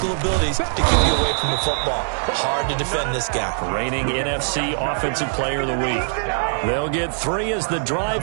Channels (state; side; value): silent; left; 64 dB below the other